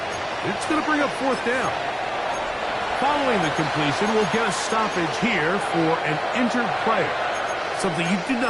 It's going to bring up 4th down. Following the completion, we'll get a stoppage here for an injured player. Something you do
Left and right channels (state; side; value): identical; both; correlation 1.00